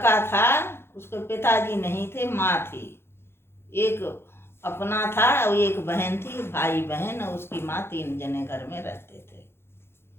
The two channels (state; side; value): late; right; 0.12 ms